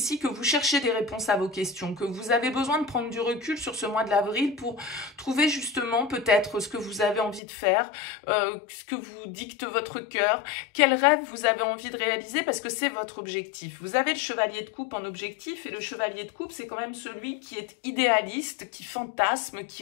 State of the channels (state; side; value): drops out; right; at 7.4 s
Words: que vous cherchez des réponses à vos questions, que vous avez besoin de prendre du recul sur ce mois de l'avril pour trouver justement peut-être ce que vous avez envie de faire, ce que vous dicte votre cœur, quel rêve vous avez envie de réaliser parce que c'est votre objectif. Vous avez le chevalier de coupe en objectif et le chevalier de coupe, c'est quand même celui qui est idéaliste, qui fantasme,